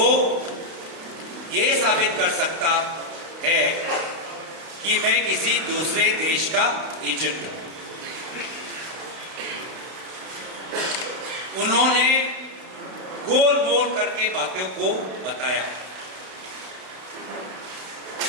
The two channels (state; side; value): late; left; 32 ms